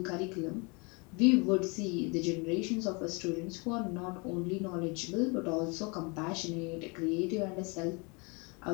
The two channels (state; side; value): quieter; right; 30.9 dB